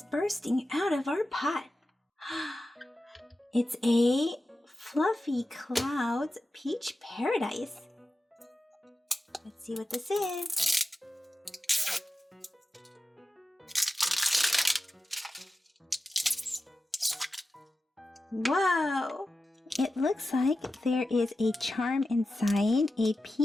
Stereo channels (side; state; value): both; normal; correlation 0.93